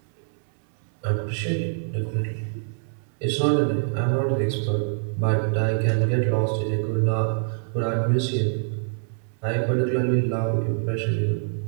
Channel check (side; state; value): left; silent; 62 dB below the other